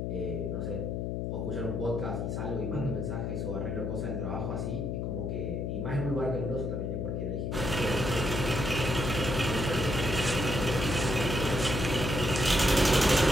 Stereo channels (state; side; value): noise; left; hum, 1 dB below the sound